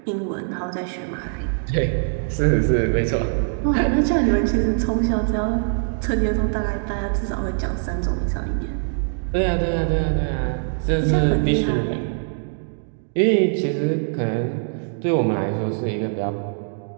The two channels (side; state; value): left; silent; digital silence